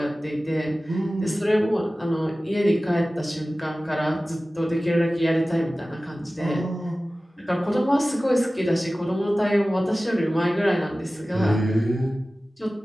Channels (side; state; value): both; normal; correlation 0.96